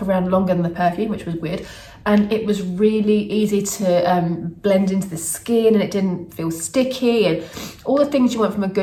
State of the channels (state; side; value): identical; both; correlation 1.00